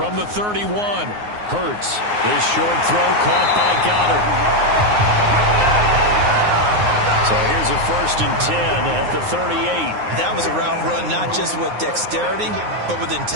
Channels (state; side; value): late; left; 9.6 ms